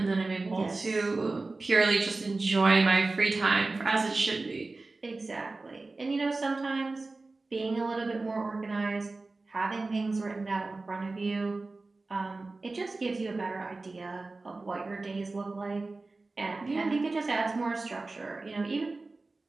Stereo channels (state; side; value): quieter; left; 3.4 dB